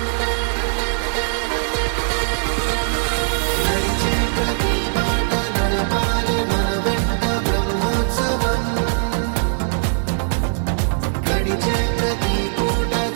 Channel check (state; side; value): silent; left; 57 dB below the other